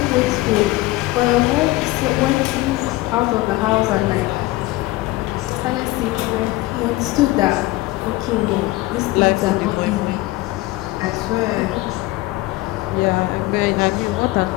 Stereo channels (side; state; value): right; quieter; 19.2 dB